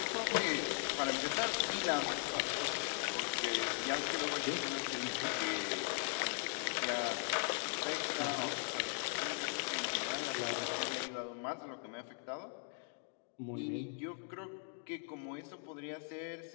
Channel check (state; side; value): silent; right; 52 dB below the other